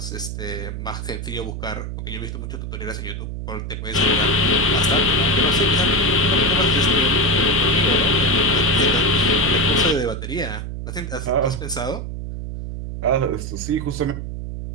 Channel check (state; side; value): noise; right; hum, 6 dB below the sound